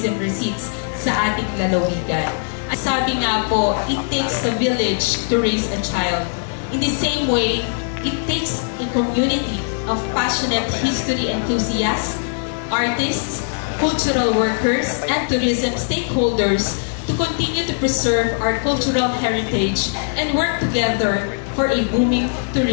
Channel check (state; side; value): silent; right; 59 dB below the other